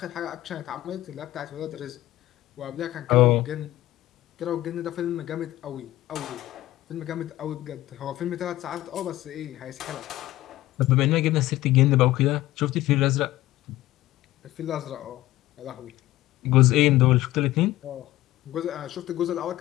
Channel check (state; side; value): quieter; right; 15.9 dB